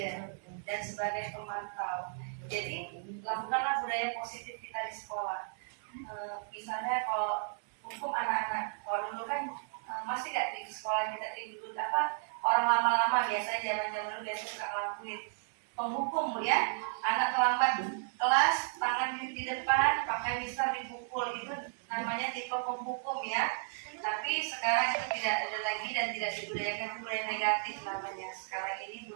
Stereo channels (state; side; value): silent; left; digital silence